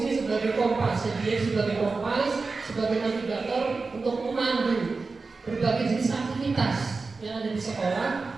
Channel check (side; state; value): left; quieter; 4.1 dB